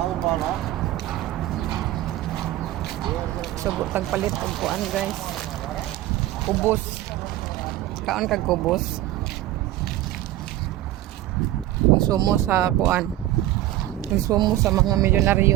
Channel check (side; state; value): left; quieter; 14.7 dB